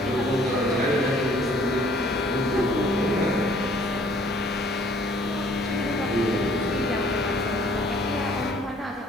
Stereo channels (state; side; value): normal; both; correlation 0.58